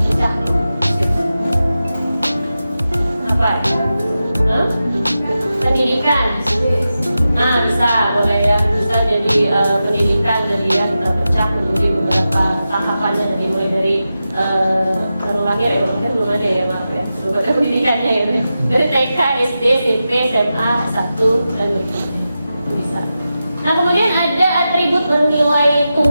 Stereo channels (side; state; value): both; inverted; correlation -0.91